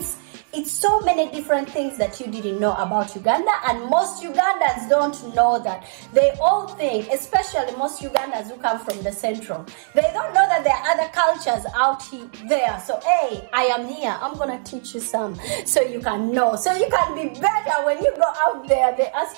so many different things that you didn't know about Uganda, and most Ugandans don't know that. They all think, especially most Ugandans who come from the central, they don't know that there are other cultures out there. So hey, I am here, I'm gonna teach you some so you can know, so you can be better when you go out there. They ask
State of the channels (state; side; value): silent; left; digital silence